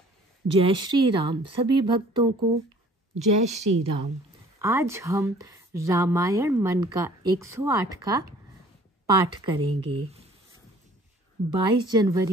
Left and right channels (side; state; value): both; normal; correlation 0.53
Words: जय श्री राम। सभी भक्तों को जय श्री राम। आज हम रामायण मन का 108 का पाठ करेंगे। 22